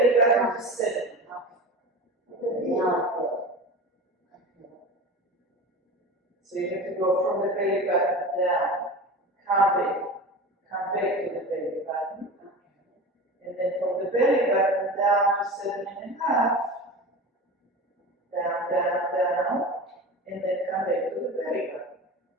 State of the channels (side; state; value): both; normal; correlation 0.30